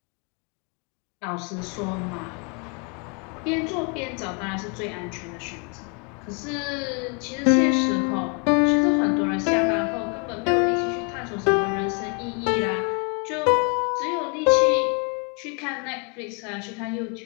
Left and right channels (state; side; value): quieter; right; 37.0 dB